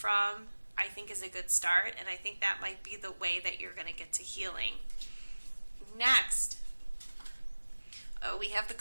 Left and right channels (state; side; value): inverted; both; correlation -1.00